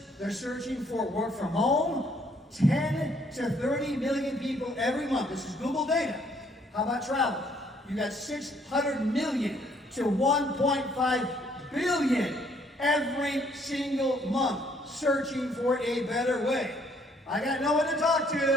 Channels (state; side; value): normal; both; correlation 0.66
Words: They're searching for work from home. 10 to 30 million people every month. This is Google data. How about travel? You got 600 million to 1.5 billion every single month searching for a better way. I got no one to talk to.